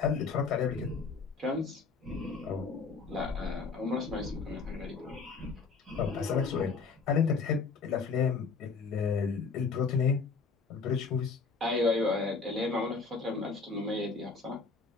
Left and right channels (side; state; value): right; quieter; 4.7 dB